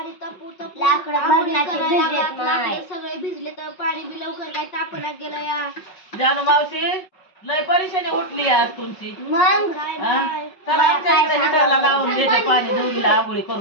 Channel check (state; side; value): late; right; 5.4 ms